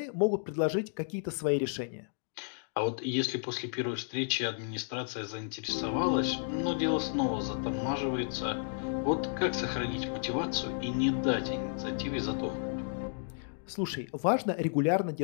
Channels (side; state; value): right; silent; digital silence